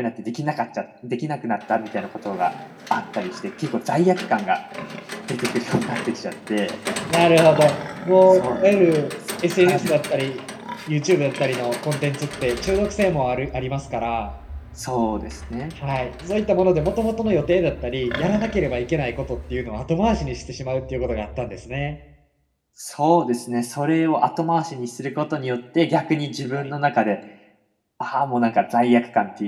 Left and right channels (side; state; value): both; identical; correlation 1.00